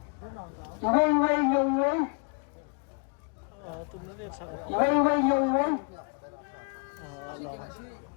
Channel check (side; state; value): right; quieter; 39.6 dB